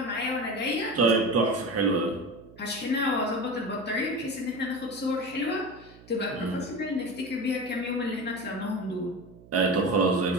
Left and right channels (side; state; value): right; noise; hum, 22 dB below the sound